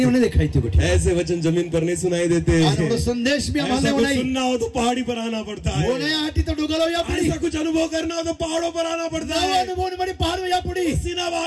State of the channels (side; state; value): both; identical; correlation 1.00